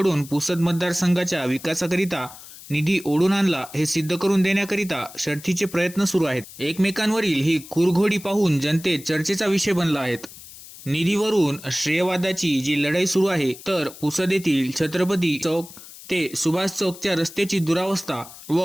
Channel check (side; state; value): left; noise; hiss, 17 dB below the sound